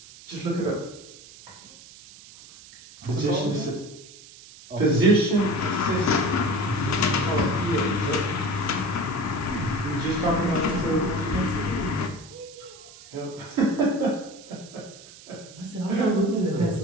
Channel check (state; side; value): noise; right; hiss, 20 dB below the sound